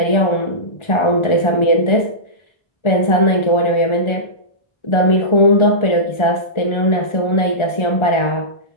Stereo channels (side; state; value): right; late; 1.4 ms